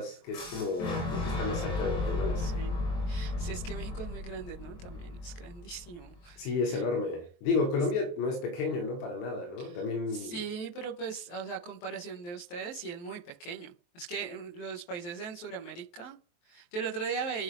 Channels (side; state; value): right; late; 23 ms